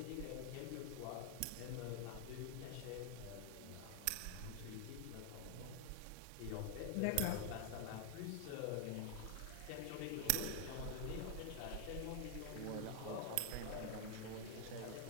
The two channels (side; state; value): both; different; correlation 0.00